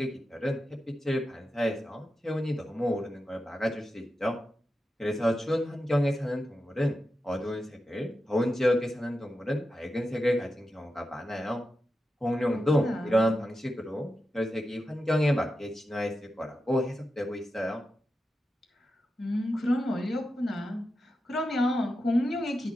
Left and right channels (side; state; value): both; normal; correlation 0.90